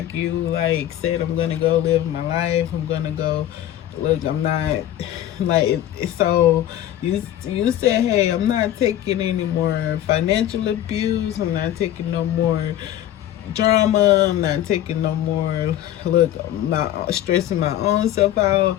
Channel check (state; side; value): quieter; right; 12.4 dB